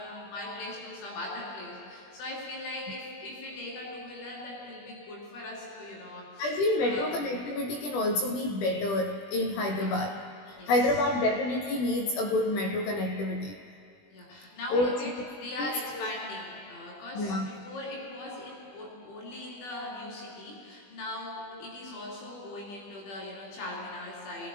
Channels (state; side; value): late; right; 20 ms